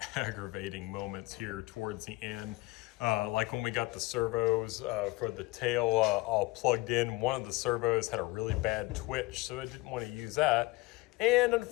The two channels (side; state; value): right; quieter; 21.5 dB